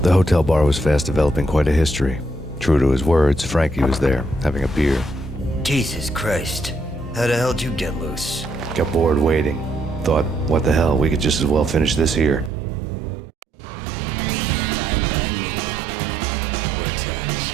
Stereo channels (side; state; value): left; drops out; at 12.5 s